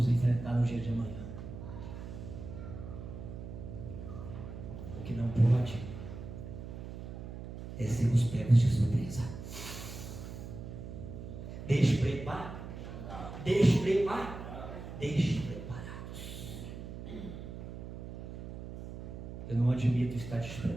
enfrentar no dia de amanhã. O que não pode é sermos pegos de surpresa. Despreparados. Eu não admito estar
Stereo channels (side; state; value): right; noise; hum, 9 dB below the sound